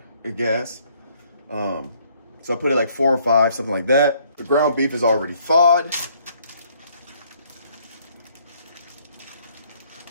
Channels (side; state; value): both; inverted; correlation -0.64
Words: a gas. So I put it like 4 or 5, something like that. The ground beef is already thawed.